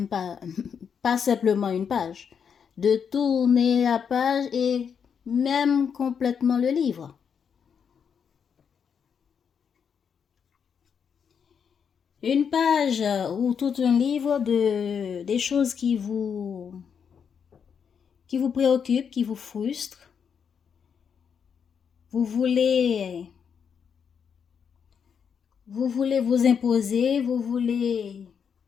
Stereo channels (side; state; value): right; quieter; 7.1 dB